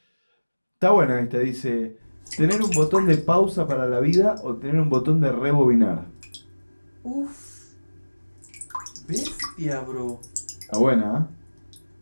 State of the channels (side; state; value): both; inverted; correlation -1.00